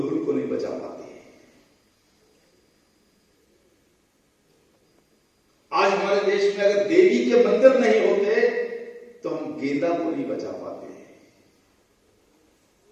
को नहीं बचा पाते। आज हमारे देश में अगर देवी के मंदिर नहीं होते तो हम गेंदा को नहीं बचा पाते,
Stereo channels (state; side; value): identical; both; correlation 1.00